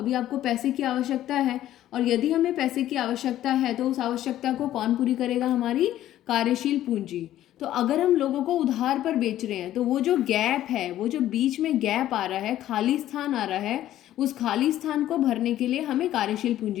आपको पैसे की आवश्यकता है, और यदि हमें पैसे की आवश्यकता है तो उस आवश्यकता को कौन पूरी करेगा? हमारी कार्यशील पूंजी। तो अगर हम लोगों को उधार पर बेच रहे हैं तो वो जो गैप है, वो जो बीच में गैप आ रहा है, खाली स्थान आ रहा है, उस खाली स्थान को भरने के लिए हमें कार्यशील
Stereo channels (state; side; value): quieter; right; 13.0 dB